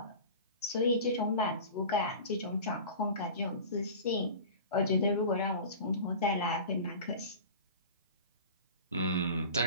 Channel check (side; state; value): both; inverted; correlation -0.36